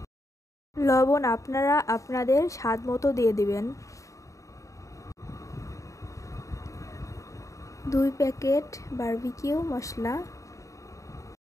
লবণ আপনারা আপনাদের স্বাদ মতো দিয়ে দিবেন। 2 প্যাকেট বারবিকিউ মশলা,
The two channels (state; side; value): late; right; 0.16 ms